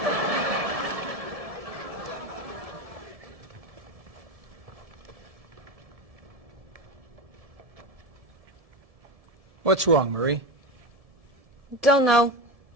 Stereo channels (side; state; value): left; late; 1.7 ms